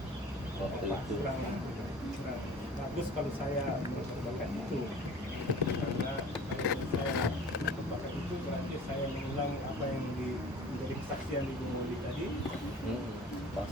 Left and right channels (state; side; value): normal; both; correlation 0.44